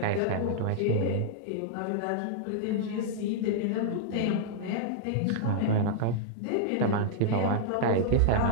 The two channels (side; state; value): both; different; correlation -0.01